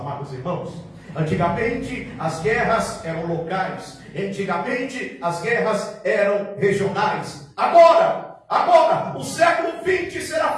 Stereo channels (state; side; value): identical; both; correlation 1.00